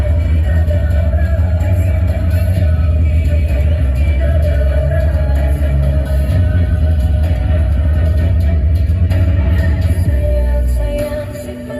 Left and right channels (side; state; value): both; identical; correlation 1.00